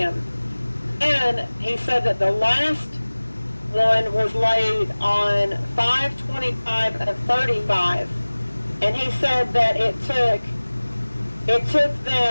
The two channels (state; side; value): inverted; both; correlation -1.00